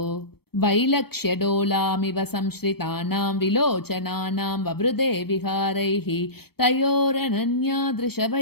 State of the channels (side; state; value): right; late; 0.96 ms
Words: वैलक्ष्यडोलामिव संश्रितानां विलोचनानां ववृदे विहारैः